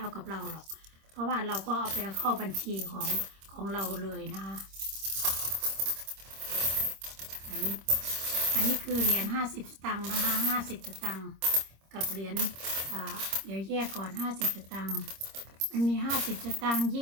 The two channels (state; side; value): late; left; 26 ms